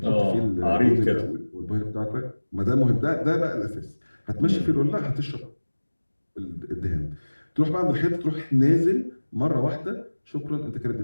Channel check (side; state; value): both; inverted; correlation -1.00